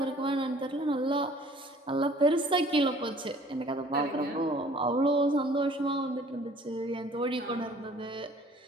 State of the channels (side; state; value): both; normal; correlation 0.53